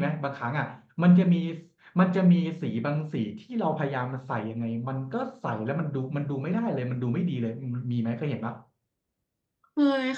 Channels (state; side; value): identical; both; correlation 1.00